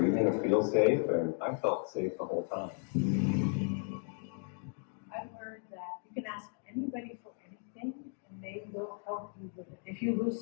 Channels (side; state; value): right; silent; 54 dB below the other